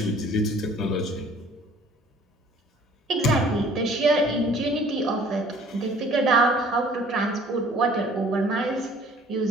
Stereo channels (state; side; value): normal; both; correlation 0.53